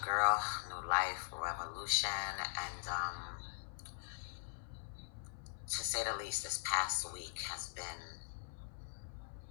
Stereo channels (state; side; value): silent; right; 50 dB below the other